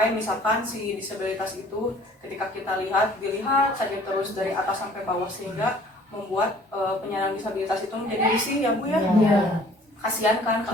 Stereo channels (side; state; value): both; normal; correlation 0.53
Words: misalkan si disabilitas itu ketika kita dilihat saja terus dari atas sampai bawah, sehingga membuat penyandang disabilitas itu menjadi risih ya Bu ya. Kasihan kan